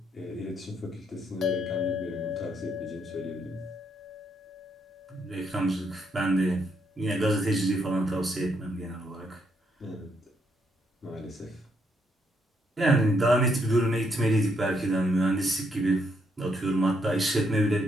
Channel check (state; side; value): normal; both; correlation 0.74